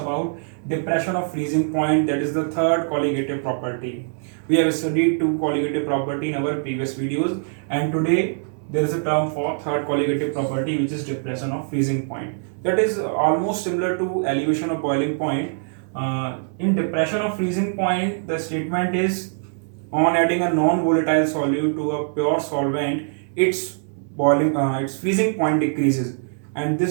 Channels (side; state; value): left; silent; 64 dB below the other